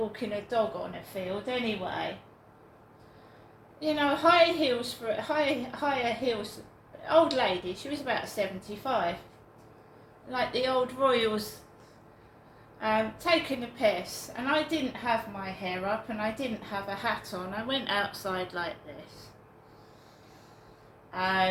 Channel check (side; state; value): both; identical; correlation 1.00